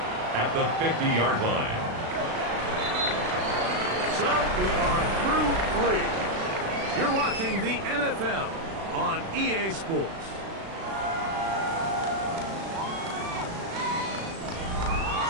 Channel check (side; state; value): left; late; 36 ms